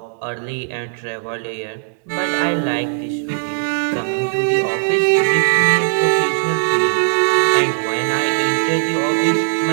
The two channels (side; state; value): left; silent; 66 dB below the other